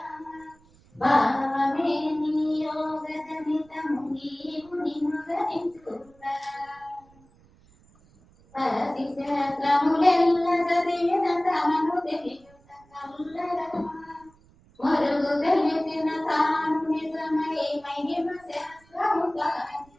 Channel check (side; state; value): right; noise; rumble, 29 dB below the sound